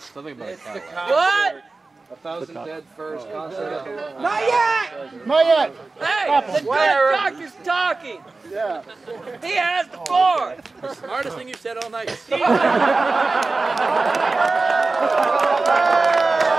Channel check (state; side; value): quieter; left; 3.6 dB